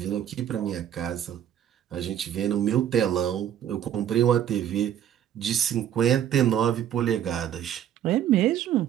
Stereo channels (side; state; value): left; quieter; 10.3 dB